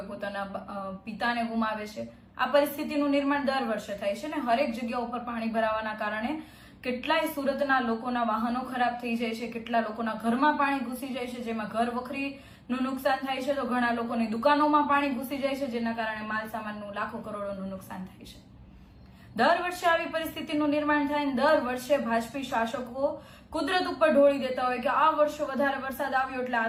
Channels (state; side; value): identical; both; correlation 1.00